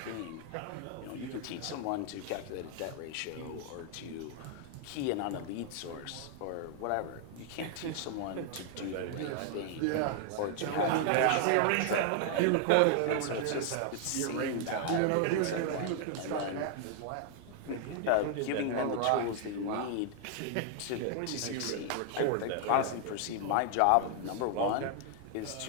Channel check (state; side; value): different; both; correlation 0.00